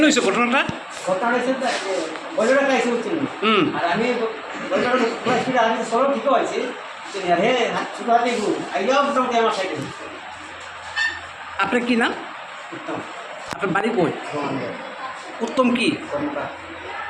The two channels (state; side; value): identical; both; correlation 1.00